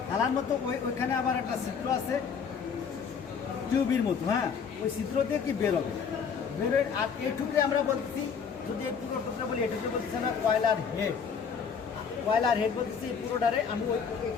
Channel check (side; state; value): right; quieter; 6.4 dB